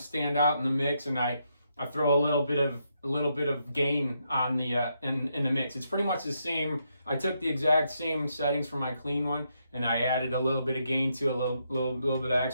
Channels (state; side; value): inverted; both; correlation -0.79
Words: out in the mix, and I throw a little bit of gain on the in the mix. It's pretty much the same. I took the exact same settings from my clean one, and I added a little bit of gain to a little bit of